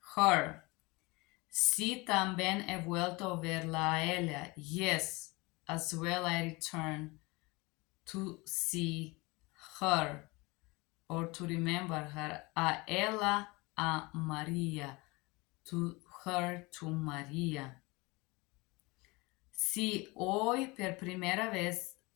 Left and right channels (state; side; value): quieter; right; 24.8 dB